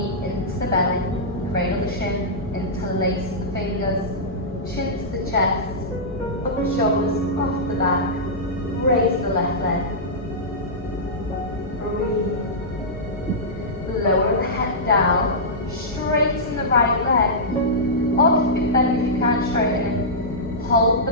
into the belly, cradle the shin, interlace the fingers, chin to the chest, up the shoulders, off the back, raise the left leg. Breathe. Lower the head down, straighten the right leg, or keep it bent if you can't straighten it. Hold the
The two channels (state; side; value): normal; both; correlation -0.13